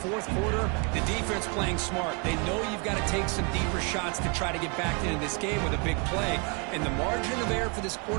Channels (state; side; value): quieter; left; 34.3 dB